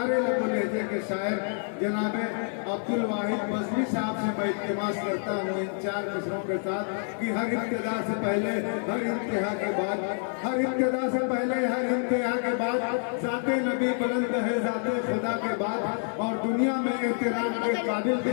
लबो लहजे के शायर जनाब अब्दुल वाहिद बजली साहब से मैं इल्तिमास करता हूँ इन 4 मिसरों के साथ कि हर इब्तिदा से पहले हर इंतहा के बाद, हर इब्तिदा से पहले हर इंतहा के बाद ज़ाते नबी बुलंद है ज़ाते खुदा के बाद, और दुनिया में एहतराम के काबिल भी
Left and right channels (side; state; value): right; silent; 58 dB below the other